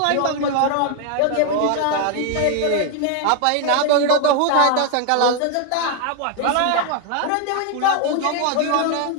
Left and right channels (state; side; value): different; both; correlation 0.00